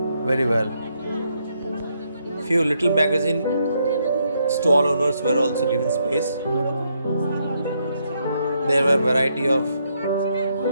very well. Few little magazine stall owners were also given space. There were variety of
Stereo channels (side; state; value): both; inverted; correlation -0.77